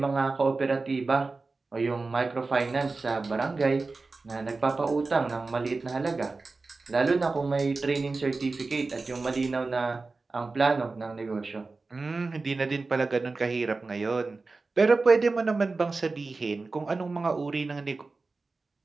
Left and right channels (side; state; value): left; quieter; 3.8 dB